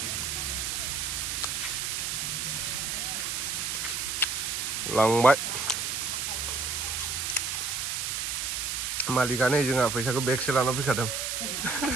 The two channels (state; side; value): noise; right; hiss, 1 dB below the sound